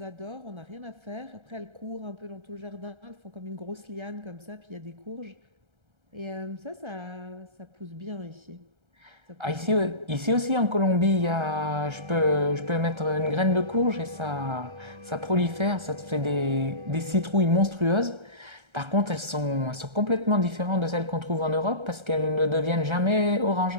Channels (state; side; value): late; left; 1.3 ms